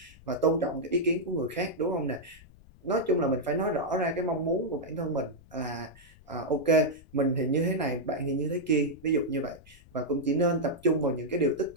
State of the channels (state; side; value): noise; left; rumble, 24 dB below the sound